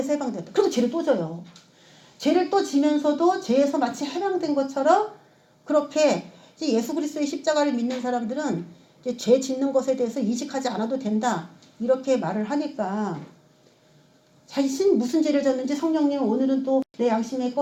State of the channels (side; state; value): both; identical; correlation 1.00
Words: 해방되었다 그리고 죄를 또 져요. 죄를 또 지면서도 죄에서 마치 해방된 것처럼 그렇게 이제 예수 그리스도의 십자가를 믿는 사람들은 이제 죄 짓는 것에 대해서 인식하지 않아도 된다 이렇게 말을 하니까 자신 무슨 죄를 졌는지 성령님 오늘은 또 내 양심에